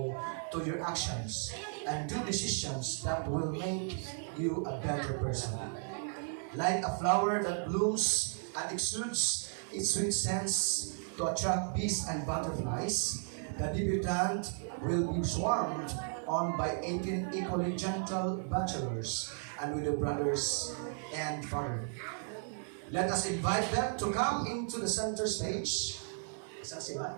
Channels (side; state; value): left; silent; 55 dB below the other